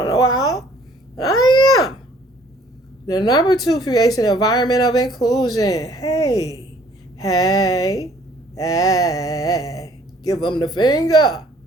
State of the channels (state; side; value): normal; both; correlation 0.58